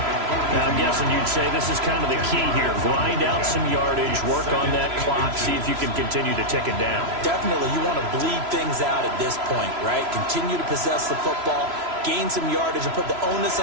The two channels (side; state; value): left; late; 3.0 ms